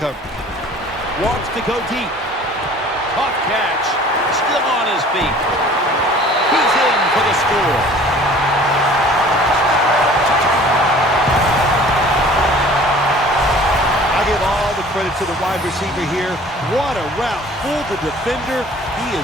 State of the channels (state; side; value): normal; both; correlation 0.49